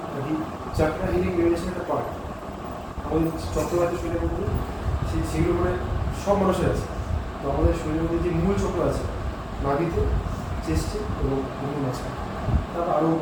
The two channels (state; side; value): identical; both; correlation 1.00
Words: আর কি চাকরা হিলিং মেডিটেশন একটা পার্ট। আমাদের চক্রবাতি শরীরের মধ্যে সেগুলো মানে সব মানুষের আছে। তো আমাদের শরীরের মধ্যে যে মূল চক্র আছে নাভিতে, চেস্টে এবং মুখের মাঝখানে, তারপর আরও